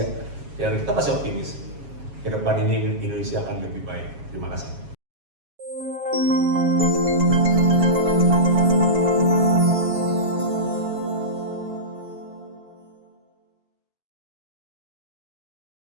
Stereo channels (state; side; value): late; left; 7.3 ms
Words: Ya kita masih optimis. Ke depan ini Indonesia akan lebih baik. Terima kasih.